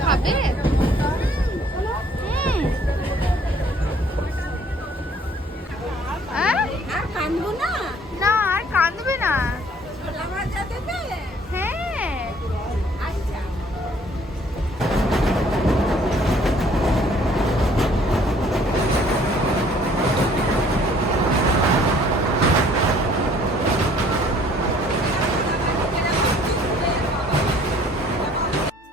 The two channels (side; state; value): both; normal; correlation 0.58